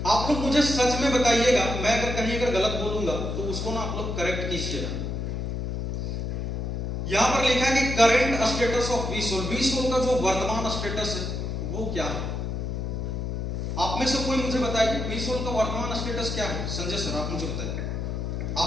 आप लोग मुझे सच में बताइएगा, मैं अगर कहीं गलत बोलूंगा तो उसको ना आप लोग करेक्ट कीजिएगा। यहां पर लिखा है कि करंट स्टेटस ऑफ वीसोल। वीसोल का जो वर्तमान स्टेटस है वो क्या है? आप में से कोई मुझे बताइए वीसोल का वर्तमान स्टेटस क्या है? संजय सर आप मुझे बताइए,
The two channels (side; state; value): left; noise; hum, 3 dB below the sound